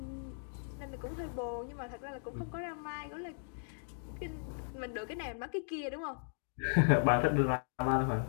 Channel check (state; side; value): silent; right; digital silence